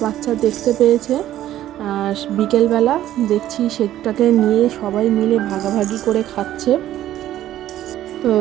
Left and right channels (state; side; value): quieter; left; 12.8 dB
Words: বাচ্চা দেখতে পেয়েছে। বিকেলবেলা দেখছি সেটাকে নিয়ে সবাই মিলে ভাগাভাগি করে খাচ্ছে। তো